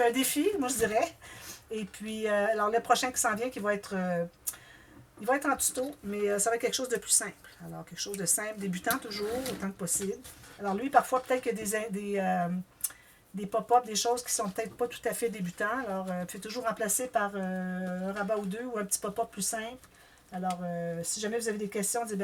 défi, moi je dirais. Et puis, alors le prochain qui s'en vient, il va être en tuto, mais ça va être quelque chose de plus simple. Alors, quelque chose de simple, débutant toujours, autant que possible. Alors lui, parfois, peut-être qu'il y a des pop-up, des choses qui sont peut-être pas tout à fait débutants. Alors, faites toujours remplacer par un rabat ou deux ou un petit pop-up plus simple. Alors, si jamais vous avez des questions, dites,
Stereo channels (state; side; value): identical; both; correlation 1.00